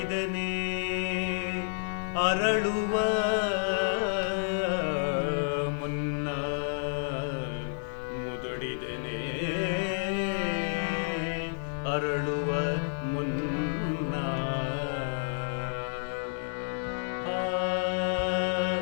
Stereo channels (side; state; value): right; silent; 58 dB below the other